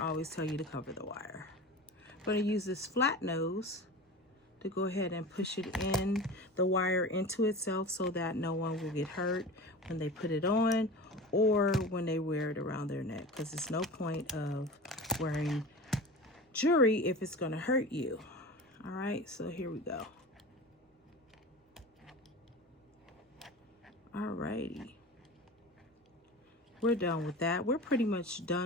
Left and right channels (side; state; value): both; normal; correlation 0.32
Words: always tell you to cover the wire. I'm going to use this flat nose to go ahead and push it in, the wire into itself, so that no one will get hurt when they put it on or when they wear it around their neck, because there's no point of wearing jewelry if it's going to hurt you. All right, so here we go. All righty. We're done with that. We're pretty much